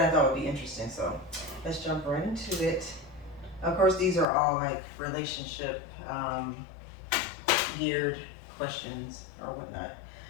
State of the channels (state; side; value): drops out; right; at 4.2 s